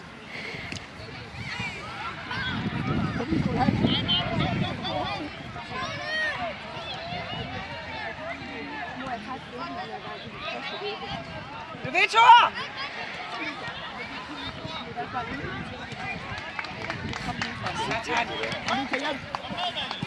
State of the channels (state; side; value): identical; both; correlation 1.00